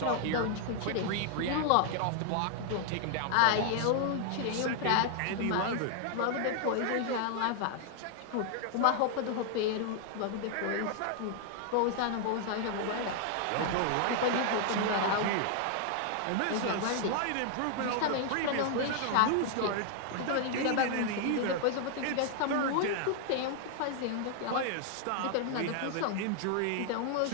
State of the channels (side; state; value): both; different; correlation 0.00